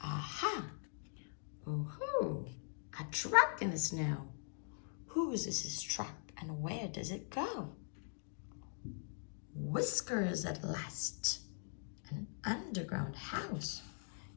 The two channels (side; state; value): right; silent; digital silence